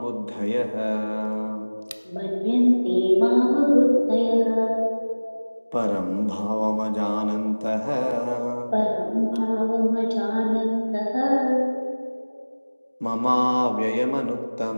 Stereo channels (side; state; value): both; inverted; correlation -1.00